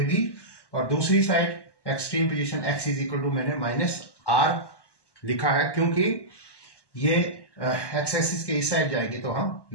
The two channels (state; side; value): late; right; 1.1 ms